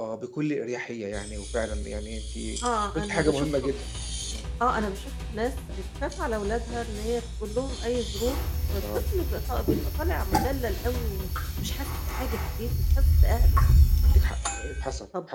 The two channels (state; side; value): identical; both; correlation 1.00